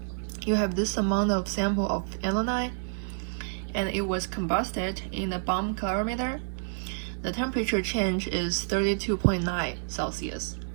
You have this amount of sample of alumni, and it was combusted in a bomb calorimeter. The temperature change is 32.9 Celsius.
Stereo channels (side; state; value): left; silent; 59 dB below the other